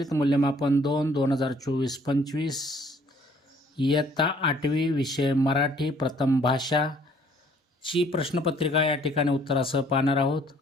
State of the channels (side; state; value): both; normal; correlation 0.60